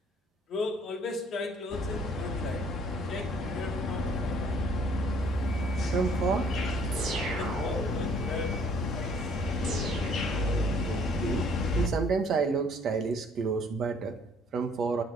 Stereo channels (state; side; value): normal; both; correlation 0.60